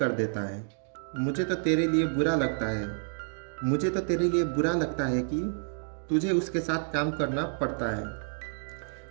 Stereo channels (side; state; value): left; silent; digital silence